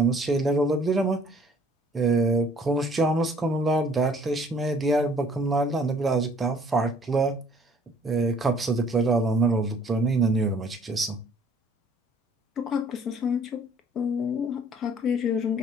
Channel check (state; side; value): normal; both; correlation 0.57